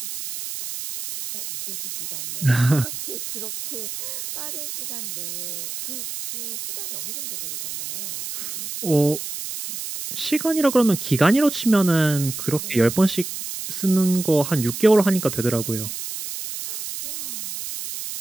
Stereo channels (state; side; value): noise; right; hiss, 7 dB below the sound